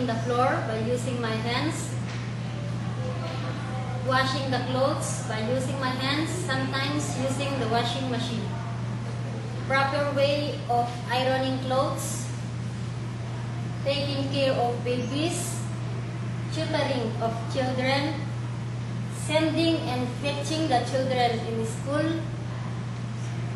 the floor by using my hands, washing the clothes by using my hands, sometimes using the washing machine, proper way of ironing clothes, taking care of babies, tutoring of children, sending and fetching the children in school,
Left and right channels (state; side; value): identical; both; correlation 1.00